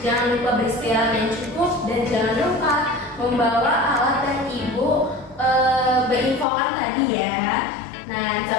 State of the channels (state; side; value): drops out; right; at 6.5 s